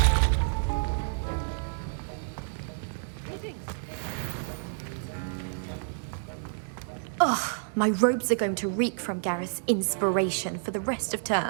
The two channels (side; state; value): left; silent; digital silence